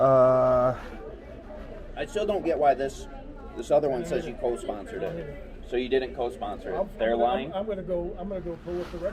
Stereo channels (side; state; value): both; identical; correlation 1.00